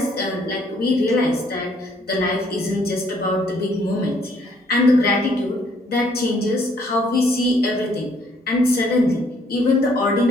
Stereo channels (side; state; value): both; normal; correlation 0.65